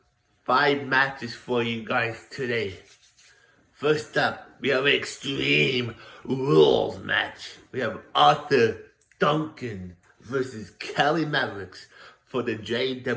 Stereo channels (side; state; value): both; identical; correlation 1.00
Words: 5 matches for you guys today. First up, we have an Extreme Rules match. We have Arthur Duncan versus Kelly Mavericks for the